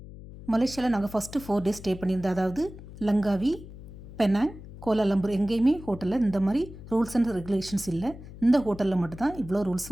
மலேசியாவில் நாங்கள் ஃபஸ்ட்டு 4 days ஸ்டே பண்ணியிருந்தோம். அதாவது லங்காவி, பெனாங், கோலாலம்பூர் எங்கேயுமே ஹோட்டலில் இந்த மாதிரி ரூல்ஸ் அண்ட் ரெகுலேஷன்ஸ் இல்லை. இந்த ஹோட்டலில் மட்டும்தான் இவ்வளோ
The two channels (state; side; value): noise; left; hum, 15 dB below the sound